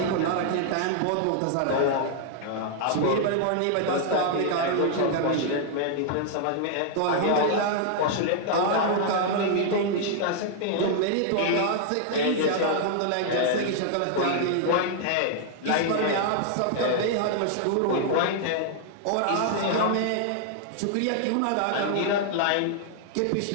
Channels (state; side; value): different; both; correlation -0.01